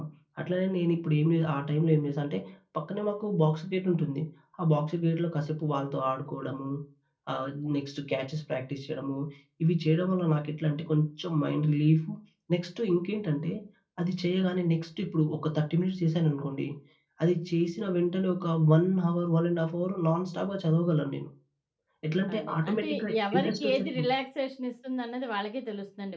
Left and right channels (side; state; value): both; identical; correlation 1.00